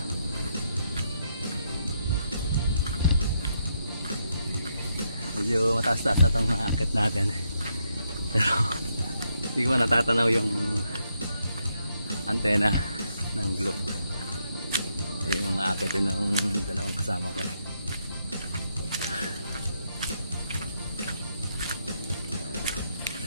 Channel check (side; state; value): both; inverted; correlation -0.78